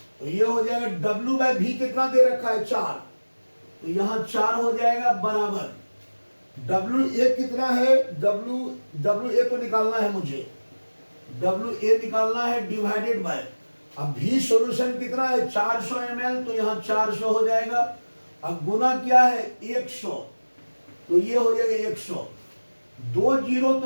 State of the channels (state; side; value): inverted; both; correlation -1.00